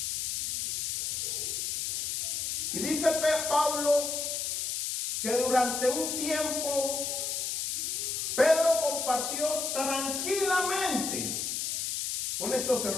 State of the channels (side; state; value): left; noise; hiss, 1 dB below the sound